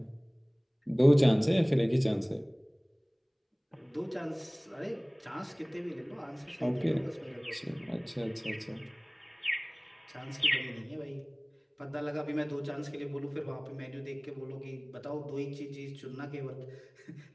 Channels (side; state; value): both; identical; correlation 1.00